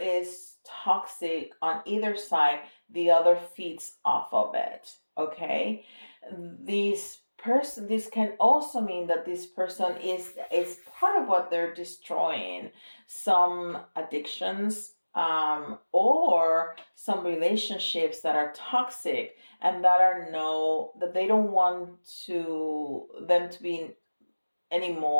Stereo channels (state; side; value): inverted; both; correlation -1.00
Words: toxic on either side, the other feeds off of it. Okay, this can also mean that this person is part of what they're destroying, some addictions, or some relationships that are toxic, and that they don't want them to be any